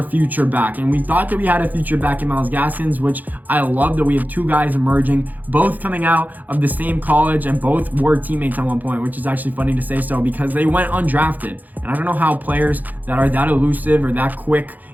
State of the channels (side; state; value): left; late; 0.083 ms